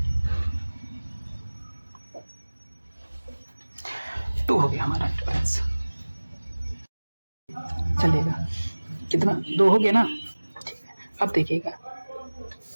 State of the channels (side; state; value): both; inverted; correlation -1.00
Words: तो हो गया हमारा डिफरेंस। चलेगा। कितना, 2 हो गया ना। ठीक है, अब देखिएगा